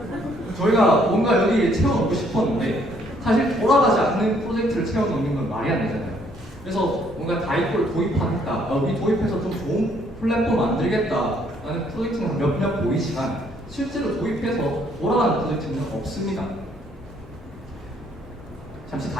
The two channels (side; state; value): both; normal; correlation 0.66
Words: 저희가 뭔가 여기 채워넣고 싶었는데 사실 돌아가지 않는 프로젝트를 채워넣는 건 말이 안 되잖아요. 그래서 뭔가 다이코를 도입하겠다, 우리 도입해서 좀 좋은 플랫폼 만들겠다라는 프로젝트는 몇몇 보이지만 실제로 도입해서 돌아가는 프로젝트는 없습니다. 잠시